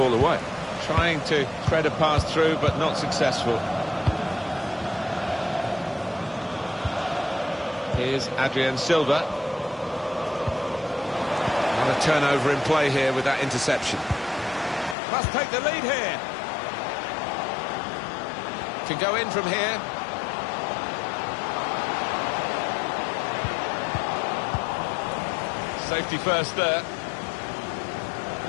away. Trying to thread a pass through, but not successful. Here's Adrien Silva. Not a turnover in play here with that interception. Must take the lead here. Can go in from here. Safety first there.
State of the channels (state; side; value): drops out; right; at 15.0 s